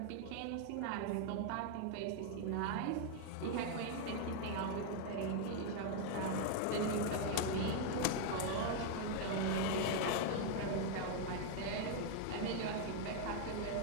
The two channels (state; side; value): different; both; correlation 0.00